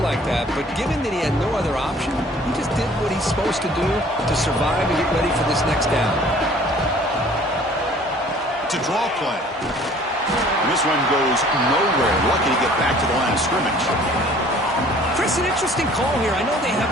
like that, but given that he had no other option, he just did what he's supposed to do to survive and get ready for this next down. It's a draw play. And this one goes nowhere. Lucky to get back to the line of scrimmage. Chris, an interesting call here. I know they have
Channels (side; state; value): both; normal; correlation 0.52